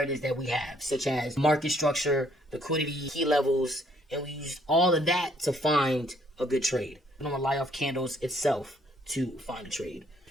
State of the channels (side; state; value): both; normal; correlation 0.65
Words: that we have, such as market structure, liquidity, key levels, and we use all of that to find a good trade. We don't rely off candles itself to find a trade.